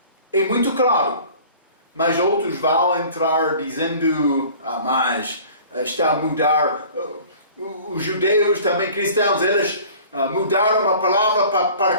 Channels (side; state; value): both; inverted; correlation -0.46